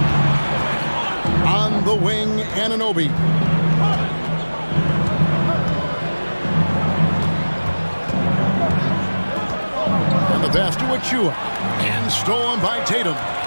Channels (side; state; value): both; inverted; correlation -1.00